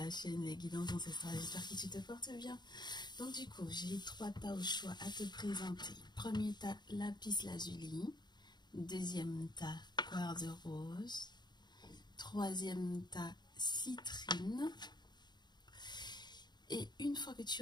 chaîne Les Guidances Ancestrales. J'espère que tu te portes bien. Donc du coup, j'ai 3 tas au choix à te présenter. Premier tas, lapis lazuli. Deuxième tas, quartz rose. Troisième tas, citrine. Et une fois que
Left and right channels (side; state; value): right; late; 0.21 ms